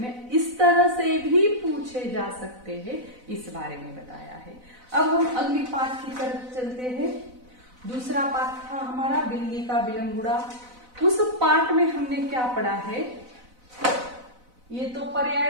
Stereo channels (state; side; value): late; left; 4.0 ms